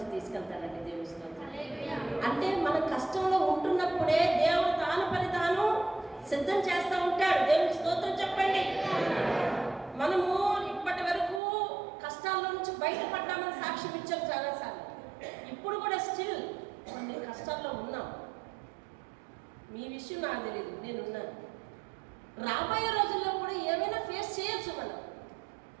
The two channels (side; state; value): left; drops out; at 11.4 s